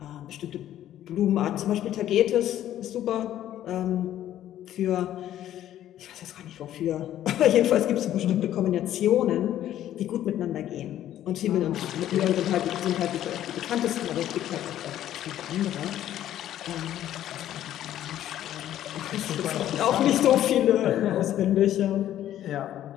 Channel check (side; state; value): right; quieter; 12.1 dB